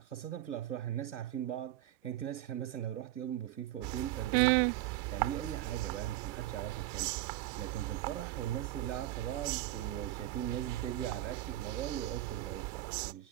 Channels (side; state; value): left; quieter; 14.6 dB